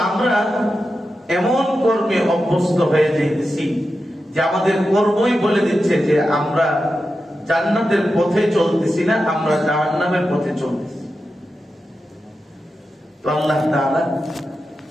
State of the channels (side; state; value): both; normal; correlation 0.90